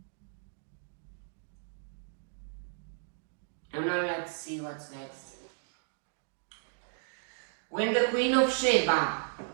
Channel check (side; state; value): left; silent; digital silence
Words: And now let's see what's next. When the Queen of Sheba